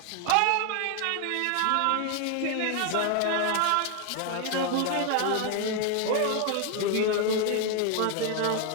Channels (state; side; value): different; both; correlation 0.00